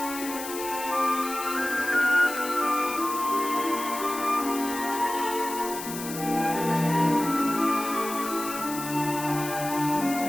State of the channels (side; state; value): left; noise; hiss, 9 dB below the sound